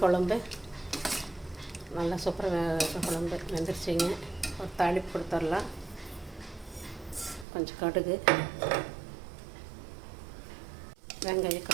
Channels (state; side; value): drops out; left; at 7.5 s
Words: குழம்பு நல்லா சூப்பராக குழம்பு வெந்துருச்சிங்க. ஒரு தாளிப்பு கொடுத்துடலாம். கொஞ்சம் கடுகு, வெங்காயம்,